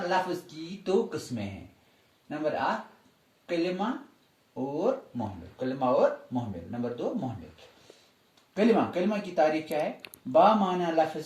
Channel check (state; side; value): identical; both; correlation 1.00